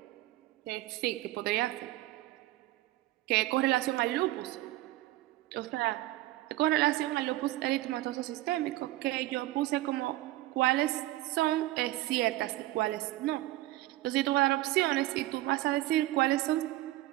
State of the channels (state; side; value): quieter; left; 17.2 dB